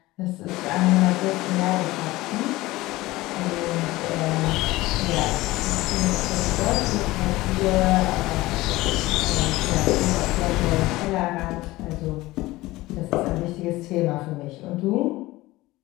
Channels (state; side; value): quieter; right; 18.8 dB